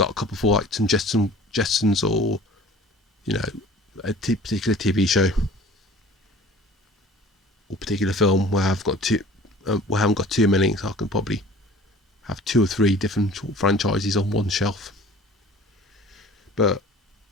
a couple for like some Jetsons, or you know, a particular TV show or particular film where I've got where I haven't got too many, so I can probably have 2 or 3 different franchises on one shelf. But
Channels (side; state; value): both; normal; correlation 0.46